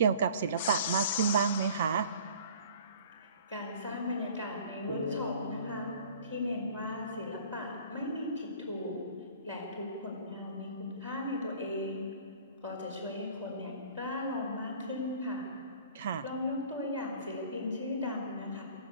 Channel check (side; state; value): both; inverted; correlation -0.49